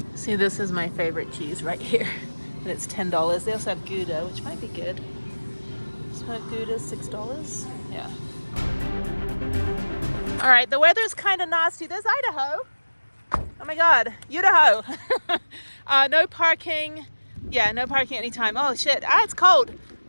See, this is my favorite cheese right here. And it's $10. They also have Gouda, which might be good. Smoked Gouda, $6. Yeah. All right, the weather's kind of nasty. There's Idaho. Oh my God, Idaho. No parking. Yeah, no parking anytime. Oh shit, it's cold.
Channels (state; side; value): inverted; both; correlation -1.00